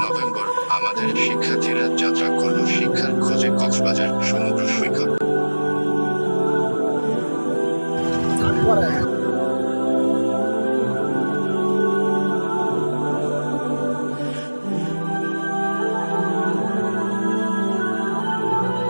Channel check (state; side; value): inverted; both; correlation -1.00